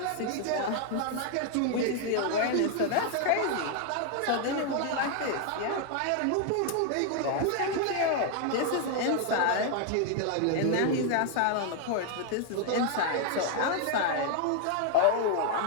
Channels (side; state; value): both; different; correlation 0.00